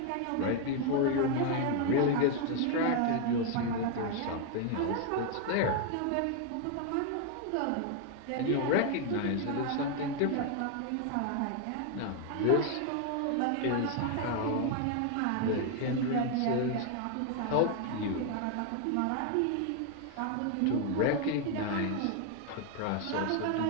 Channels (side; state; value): both; different; correlation 0.00